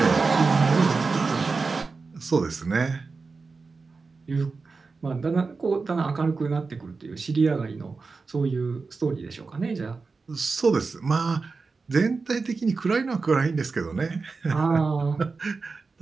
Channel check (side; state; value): left; quieter; 4.3 dB